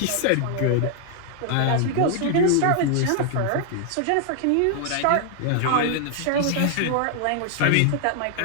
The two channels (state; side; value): different; both; correlation 0.00